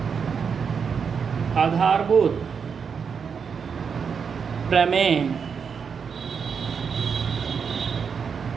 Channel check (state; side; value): quieter; left; 6.3 dB